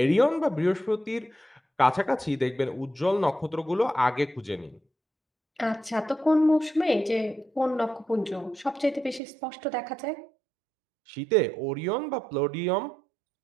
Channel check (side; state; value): left; drops out; at 9.2 s